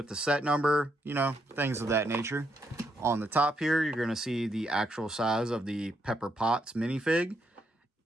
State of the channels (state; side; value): normal; both; correlation 0.78